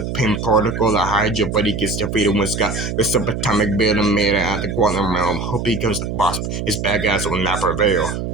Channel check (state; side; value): noise; right; hum, 4 dB below the sound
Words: Pym particle, the Hydra, but he gets defeated when Scott the subatomic building made it out the quantum realm. Hope he becomes the boss. His bad guys will not prevail.